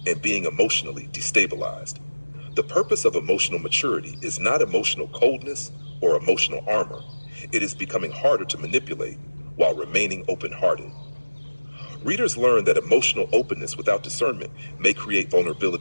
and being emotionally destabilized. The purpose of emotional maturity is not emotional coldness or emotional armor. It is becoming harder to manipulate while remaining open-hearted. Readers learn that emotional openness without discernment may create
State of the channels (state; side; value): inverted; both; correlation -1.00